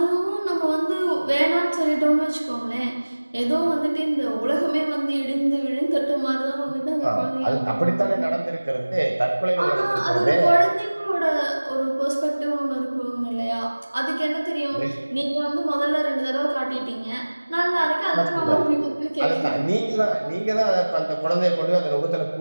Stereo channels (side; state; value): both; inverted; correlation -1.00